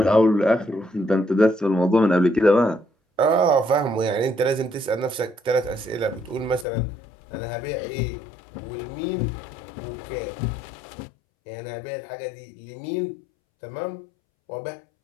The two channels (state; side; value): drops out; right; at 6.7 s